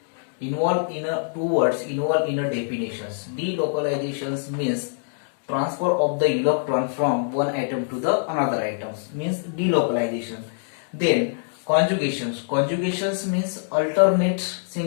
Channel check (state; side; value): silent; right; digital silence